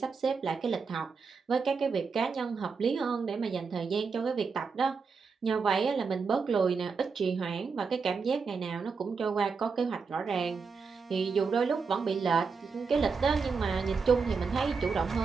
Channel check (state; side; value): quieter; left; 5.1 dB